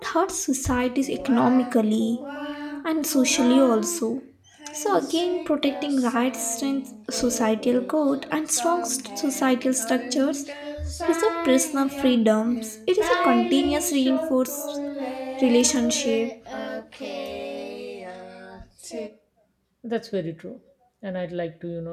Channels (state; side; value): identical; both; correlation 1.00